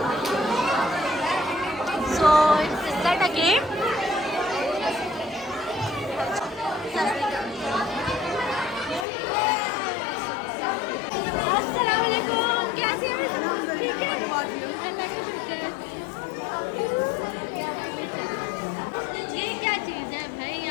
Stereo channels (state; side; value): drops out; right; at 9.1 s